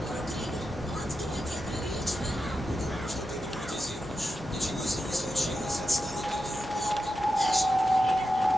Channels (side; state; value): both; normal; correlation 0.89